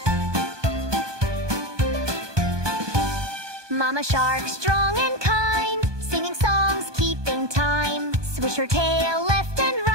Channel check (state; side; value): late; left; 1.2 ms